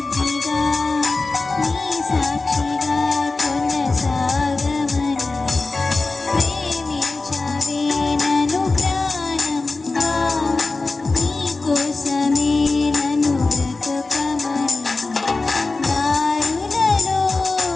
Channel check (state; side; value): quieter; right; 3.6 dB